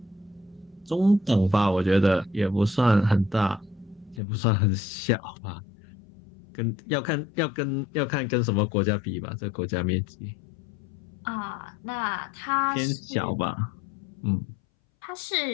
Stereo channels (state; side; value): drops out; right; at 4.2 s